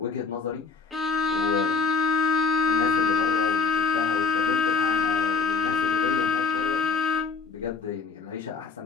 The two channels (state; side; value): quieter; right; 5.0 dB